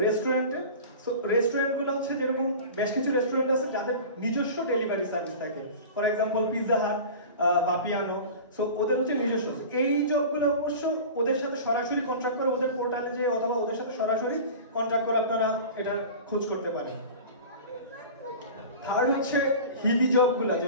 রেস্টুরেন্টে, সো রেস্টুরেন্টগুলো হচ্ছে যেরকম বেশ কিছু রেস্টুরেন্ট আছে যাদের নিজস্ব ডেলিভারি সার্ভিস থাকে, for example Pizza Hut, বাপিয়ানো, so ওদের হচ্ছে নিজস্ব। এই জবগুলো অবশ্য ওদের সাথে সরাসরি কন্ট্রাক্ট করে, ওদের পোর্টালে যে অথবা ওদের সাথে সরাসরি কন্ট্রাক্ট করে আপনারা এটা খোঁজ করতে পারেন। থার্ড হচ্ছে হিলি জবগুলো,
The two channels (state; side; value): inverted; both; correlation -0.35